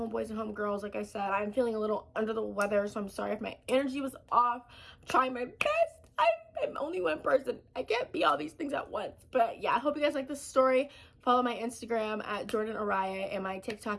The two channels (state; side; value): identical; both; correlation 1.00